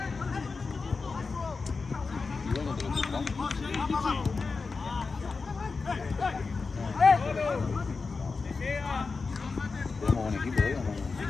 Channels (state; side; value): quieter; right; 4.4 dB